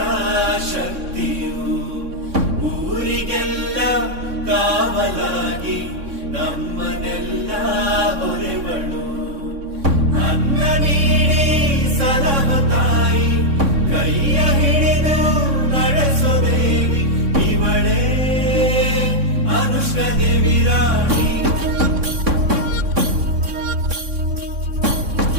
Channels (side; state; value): left; late; 3.6 ms